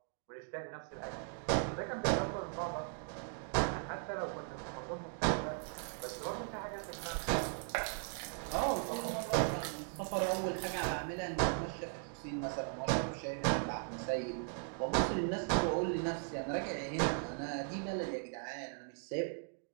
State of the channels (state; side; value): silent; left; 52 dB below the other